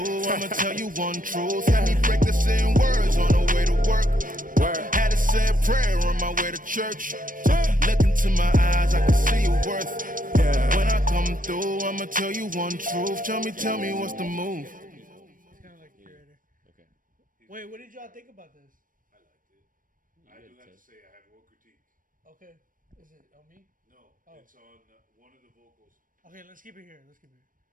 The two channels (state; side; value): late; left; 0.40 ms